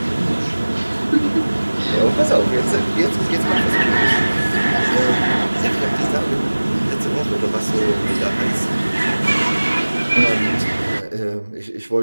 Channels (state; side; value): inverted; both; correlation -1.00